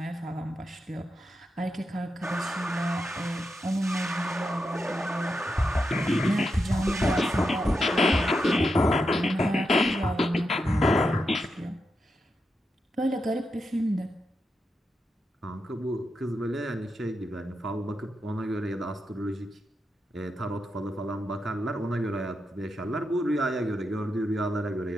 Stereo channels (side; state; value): both; normal; correlation 0.86